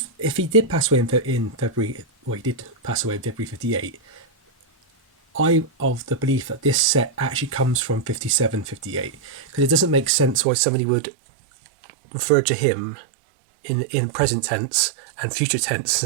he did pass away in February, well, he did pass away in February 58. I'm of the belief that this set actually comes from 57, 58, because it doesn't make sense why somebody would refer to him in present tense and future tense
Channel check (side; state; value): left; drops out; at 10.5 s